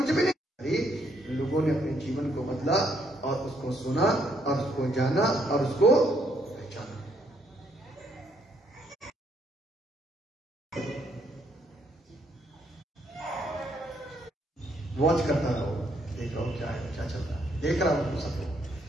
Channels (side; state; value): both; normal; correlation 0.71